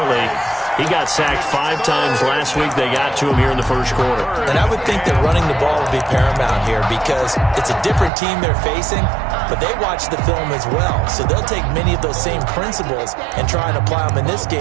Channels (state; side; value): drops out; left; at 8.1 s